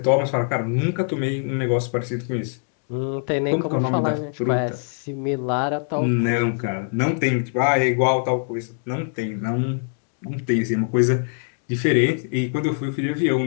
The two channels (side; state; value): right; silent; 63 dB below the other